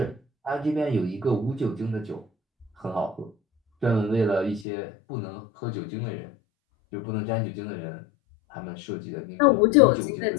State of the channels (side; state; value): right; drops out; at 4.7 s